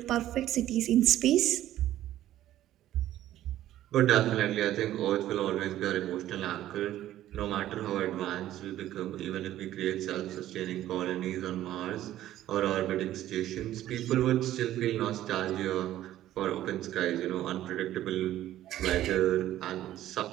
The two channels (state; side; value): quieter; left; 13.3 dB